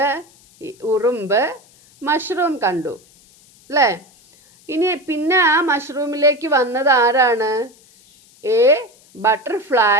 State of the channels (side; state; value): left; noise; hiss, 28 dB below the sound